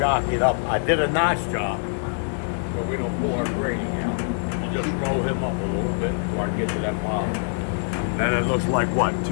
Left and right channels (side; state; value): right; silent; 63 dB below the other